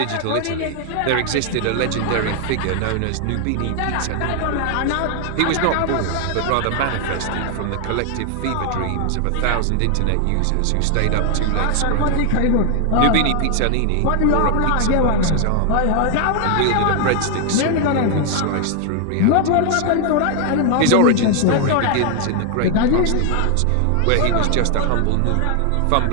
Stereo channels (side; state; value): both; different; correlation 0.00